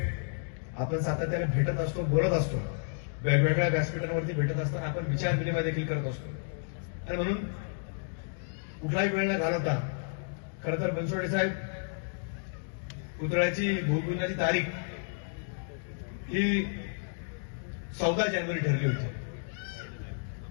आपण सातत्याने भेटत असतो, बोलत असतो, वेगवेगळ्या व्यासपीठांवरती भेटत असताना आपण विचार विनिमय देखील करत असतो। आणि म्हणून कुठलाही वेळ न घालवता खरं तर बनसोडे साहेब पुतळ्याची भूमिपूजनाची तारीख ही 14 जानेवारी ठरली होती।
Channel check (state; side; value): silent; right; digital silence